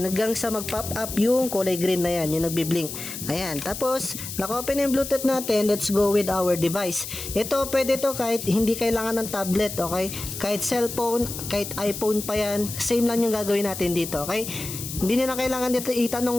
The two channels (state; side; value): noise; left; hiss, 8 dB below the sound